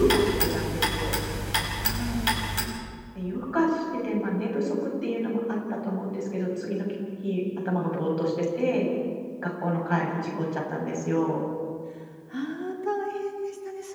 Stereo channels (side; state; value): both; identical; correlation 1.00